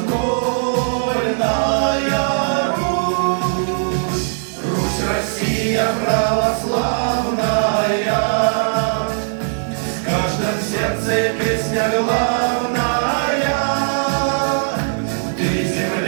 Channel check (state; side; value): silent; left; 63 dB below the other